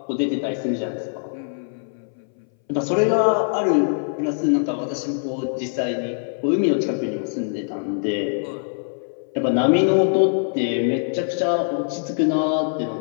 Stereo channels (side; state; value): right; silent; 61 dB below the other